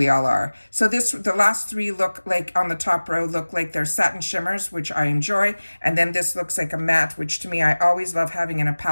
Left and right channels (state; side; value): inverted; both; correlation -1.00